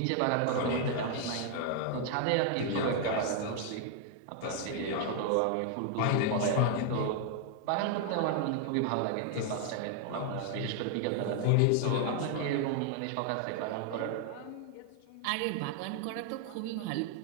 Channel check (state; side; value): different; both; correlation 0.00